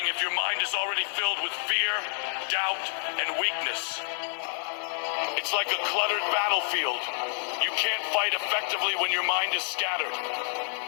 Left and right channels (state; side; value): silent; right; 59 dB below the other